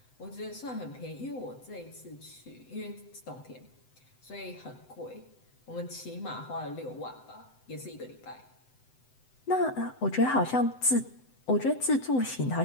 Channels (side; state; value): right; late; 7.9 ms